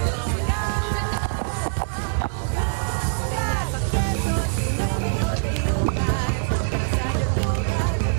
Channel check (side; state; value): left; silent; digital silence